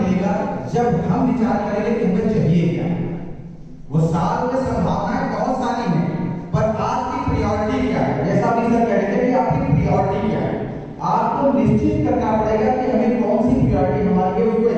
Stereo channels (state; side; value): identical; both; correlation 1.00